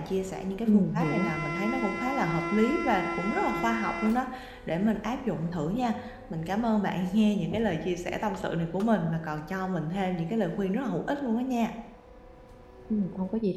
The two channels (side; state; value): both; identical; correlation 1.00